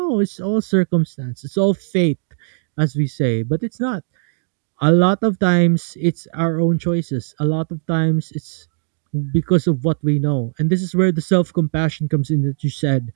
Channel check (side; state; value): left; silent; digital silence